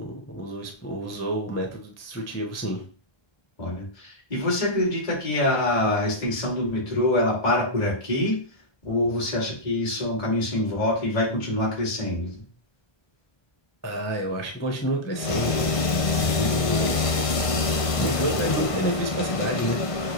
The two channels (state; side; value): late; right; 1.5 ms